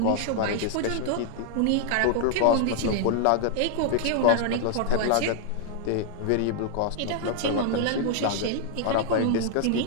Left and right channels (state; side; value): different; both; correlation 0.00